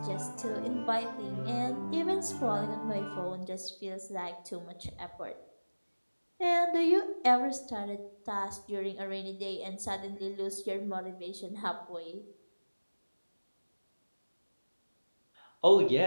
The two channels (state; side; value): inverted; both; correlation -1.00